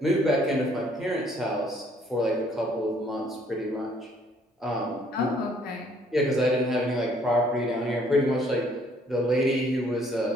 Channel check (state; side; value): normal; both; correlation 0.62